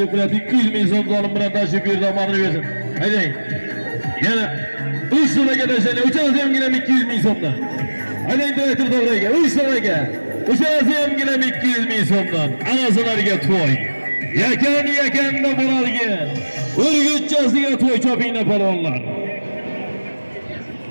200 ming so'm zolim bilan tashib berdi, omonini bersin. Haydang. Yana 3 so'mga tashlaydi. Uchalasi ham 200 ming so'mdan. Haydang direktor to'g'riga 3 so'mga. Uçası hem gilem 200 bin so'mdan. Anasılarga to'y. Yakan-yakanda Muralga. Urgutchasiga to'y chopinglar palvonlar.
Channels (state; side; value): inverted; both; correlation -1.00